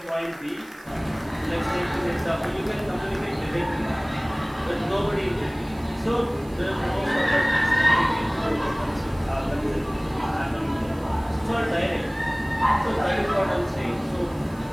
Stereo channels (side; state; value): right; noise; hiss, 25 dB below the sound